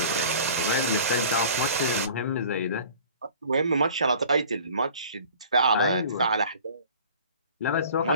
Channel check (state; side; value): inverted; both; correlation -0.46